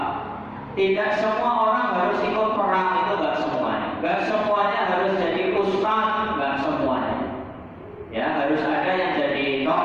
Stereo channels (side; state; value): both; identical; correlation 1.00